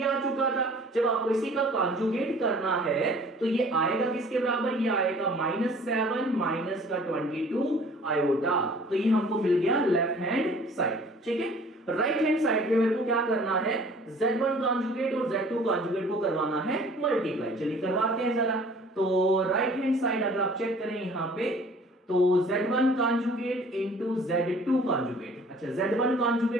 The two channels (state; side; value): normal; both; correlation 0.52